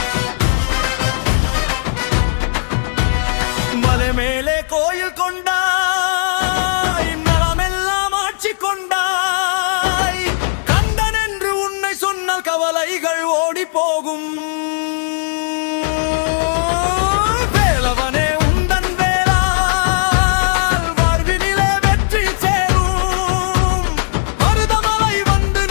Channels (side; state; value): right; silent; 64 dB below the other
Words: மலை மேலே கோயில் கொண்டாய் மரமெல்லாம் ஆட்சி கொண்டாய் கந்தன் என்று உன்னை சொன்னால் கவலைகள் ஓடி போகும் வேலவனே உந்தன் வேளால் வாழ்வினிலே வெற்றி சேரும் மருதமலை வந்து